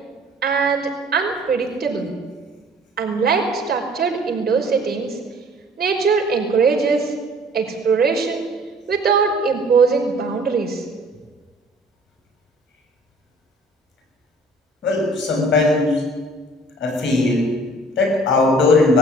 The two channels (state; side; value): normal; both; correlation 0.52